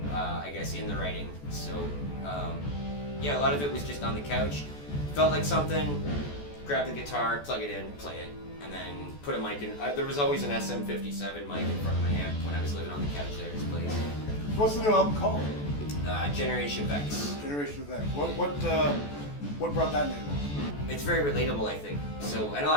I guess, in the writing. So yeah, a lot of it was just on the couch. Felt like something. Grab the guitar, plug it in, play it. And then put a mic in. There was always an SM57 mic in front of my amp when I was living on the couch there at his place. What's the new album called? Generation Vex. Generation Vex. What brought that name on? It's very relatable, I think. So, and a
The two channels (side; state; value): right; late; 14 ms